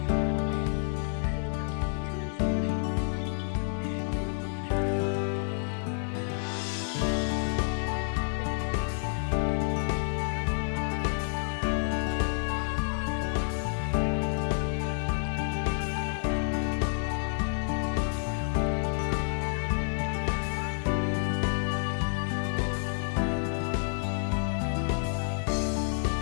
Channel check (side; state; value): right; silent; 58 dB below the other